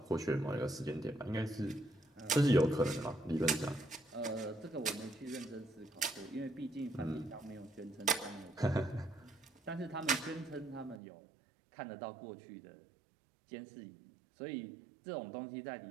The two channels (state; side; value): drops out; left; at 11.0 s